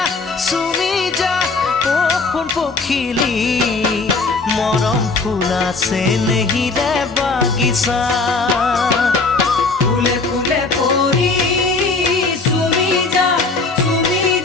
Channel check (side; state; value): right; quieter; 3.9 dB